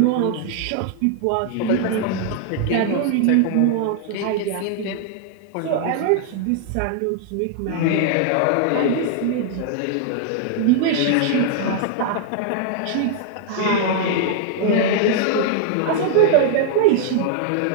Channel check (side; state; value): both; different; correlation 0.00